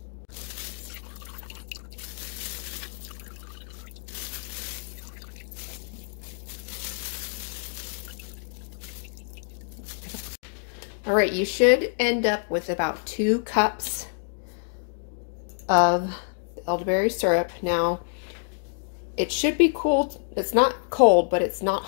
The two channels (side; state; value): right; silent; digital silence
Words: All right, you should end up with about 2 cups of elderberry syrup. Now, it should be cool. It's not cold, but it's not